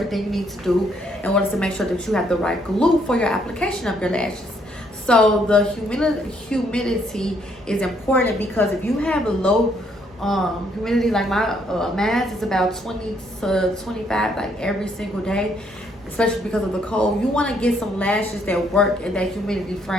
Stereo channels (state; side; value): normal; both; correlation 0.70